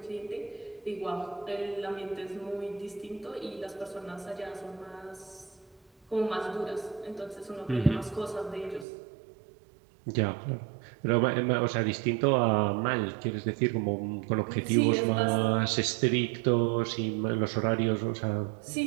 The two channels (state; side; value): drops out; left; at 8.8 s